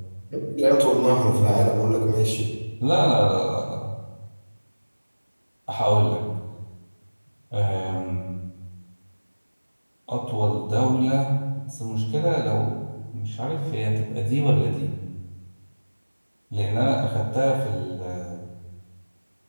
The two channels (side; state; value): both; inverted; correlation -1.00